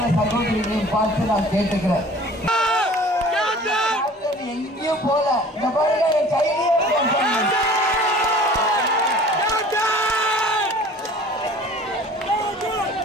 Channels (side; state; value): both; normal; correlation 0.47